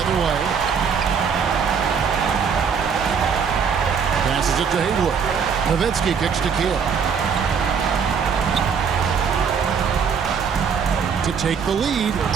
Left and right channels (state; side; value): quieter; left; 6.4 dB